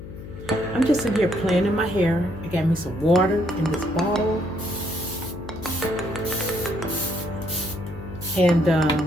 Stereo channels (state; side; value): noise; left; hum, 12 dB below the sound